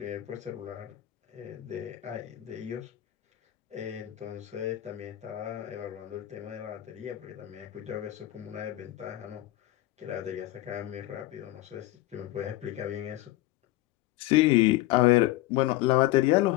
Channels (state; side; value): quieter; right; 16.4 dB